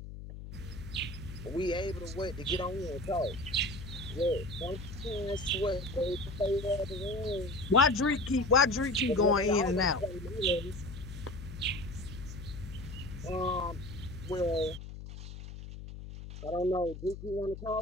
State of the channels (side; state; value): left; noise; hum, 11 dB below the sound